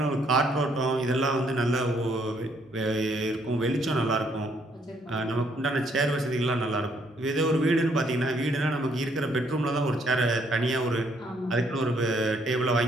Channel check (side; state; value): both; normal; correlation 0.69